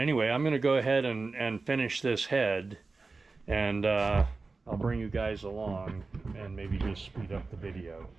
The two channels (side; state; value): left; quieter; 3.9 dB